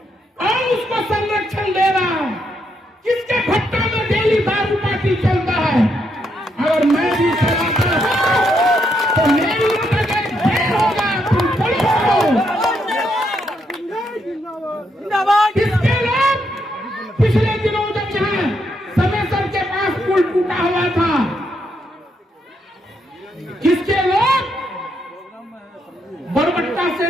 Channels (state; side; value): normal; both; correlation 0.78